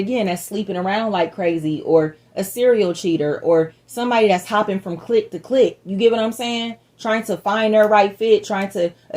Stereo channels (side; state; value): both; identical; correlation 1.00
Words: that's sleeping around like crazy, or a serial cheater, or somebody that's hopping from clique to clique. You get what I'm saying? Trying to find their right fit, trying to